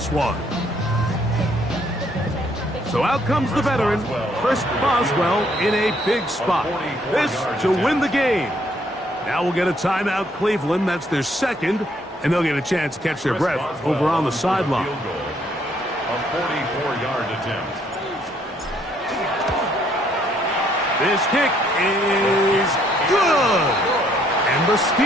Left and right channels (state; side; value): normal; both; correlation 0.68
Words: one. So out comes the veteran, Chris Boswell, in a big spot. This to win the game. Now we'll get a timeout, Cleveland. That's their second, and they'll get a chance to catch their breath over on the sideline. A 44-yard attempt. This kick is good. And the